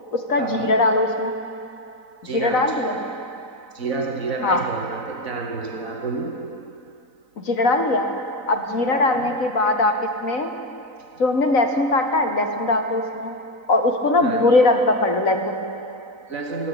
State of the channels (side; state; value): right; late; 4.0 ms